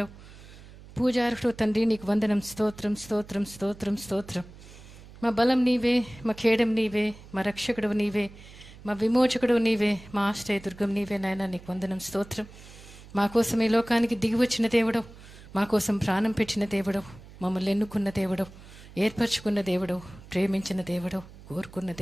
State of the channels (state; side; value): noise; right; hum, 19 dB below the sound